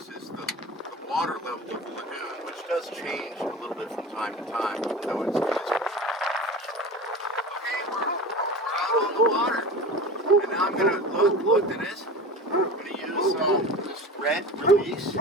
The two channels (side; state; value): both; normal; correlation 0.33